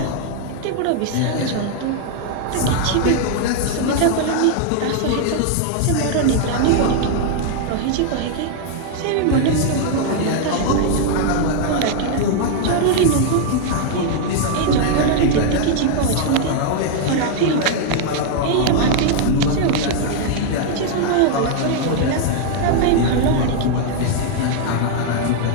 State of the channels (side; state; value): both; different; correlation 0.00